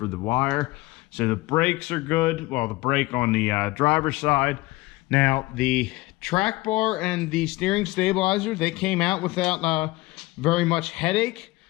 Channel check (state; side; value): quieter; right; 20.5 dB